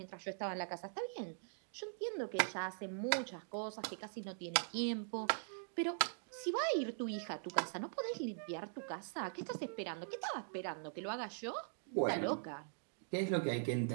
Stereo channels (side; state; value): left; silent; digital silence